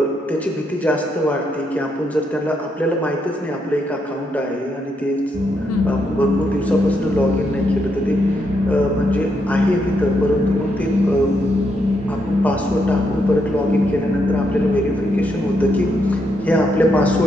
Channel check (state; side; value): normal; both; correlation 0.78